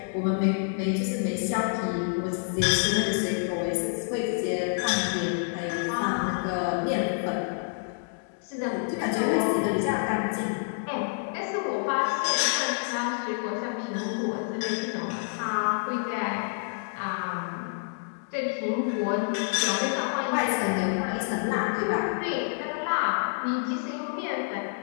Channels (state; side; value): silent; right; digital silence